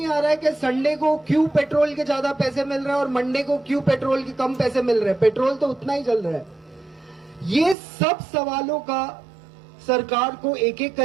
आ रहा है कि संडे को क्यों पेट्रोल के ज्यादा पैसे मिल रहे हैं और मंडे को क्यों पेट्रोल के कम पैसे मिल रहे हैं, पेट्रोल तो उतना ही चल रहा है। ये सब सवालों का सरकार को एक एक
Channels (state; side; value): drops out; left; at 7.8 s